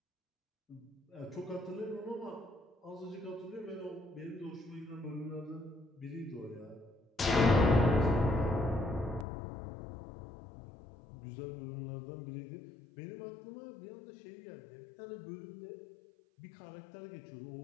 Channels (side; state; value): right; drops out; at 9.2 s